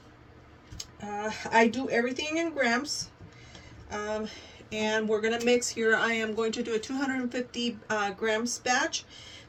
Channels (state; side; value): identical; both; correlation 1.00